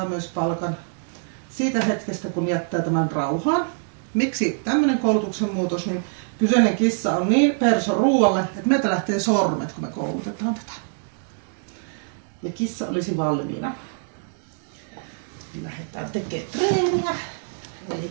myös palkan siitä hetkestä, kun jättää tämän rauhaan. Miksi tämmöinen koulutuksen muutos, niin kyseinen kissa on niin perso ruoalle, että meiltä lähtee sormet, kun me koulutetaan tätä. Ja kissa olisi valmiina. Lähdetään tekemään treeniä. Eli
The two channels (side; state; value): left; silent; 62 dB below the other